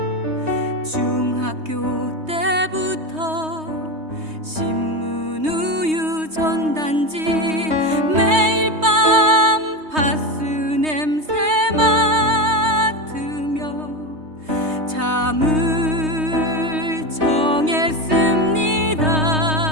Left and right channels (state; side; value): late; left; 3.2 ms